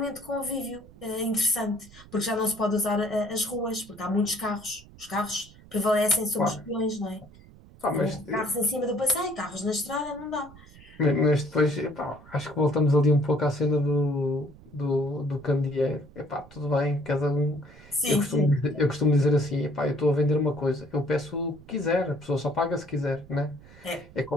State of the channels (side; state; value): right; noise; rumble, 22 dB below the sound